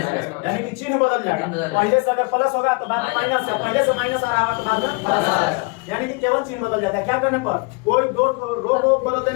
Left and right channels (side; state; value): right; quieter; 30.5 dB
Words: यानी कि चिन्ह बदल जाएगा। पहले से अगर प्लस होगा तो बाद में माइनस है, पहले से माइनस आ रहा है तो बाद में प्लस आ जाएगा, यानी कि केवल चिन्ह बदल जाता है। क्या करने पर, कोई 2 ठो रो को बदल